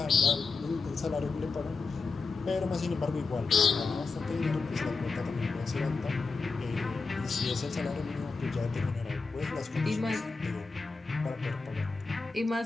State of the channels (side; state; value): right; quieter; 4.3 dB